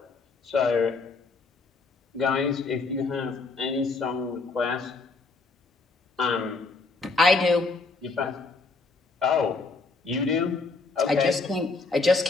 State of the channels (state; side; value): quieter; right; 3.9 dB